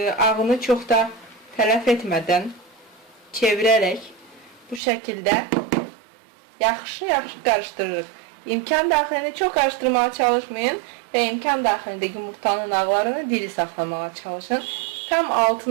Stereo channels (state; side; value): drops out; left; at 4.8 s